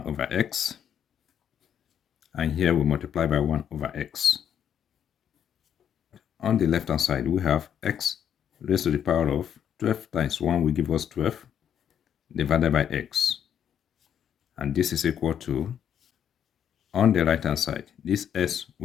over x, and here we multiply by 1 over x. On the left-hand side, we have x raised to the power of 12 times 1 will give us 12 divided by x. And this is equal to, on the right hand side, this s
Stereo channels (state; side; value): quieter; right; 9.0 dB